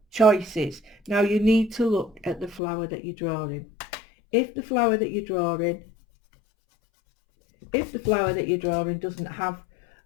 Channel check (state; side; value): drops out; right; at 2.6 s